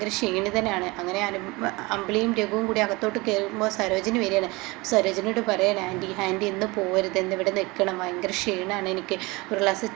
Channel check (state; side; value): quieter; left; 23.9 dB